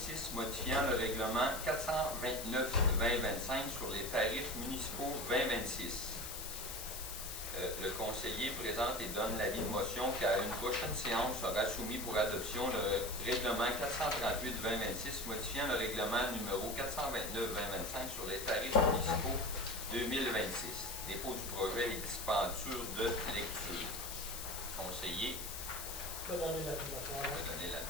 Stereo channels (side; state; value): left; noise; hiss, 7 dB below the sound